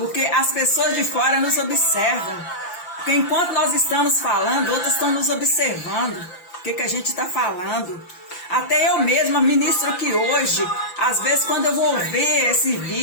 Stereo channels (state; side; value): late; right; 5.8 ms